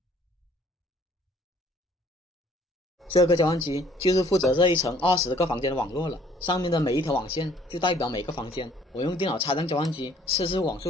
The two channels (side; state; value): both; normal; correlation 0.59